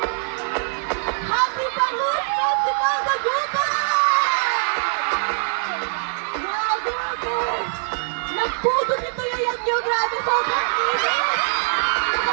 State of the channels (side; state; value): left; silent; digital silence